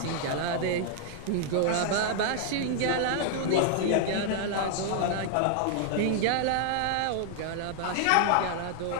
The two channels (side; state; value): both; different; correlation 0.00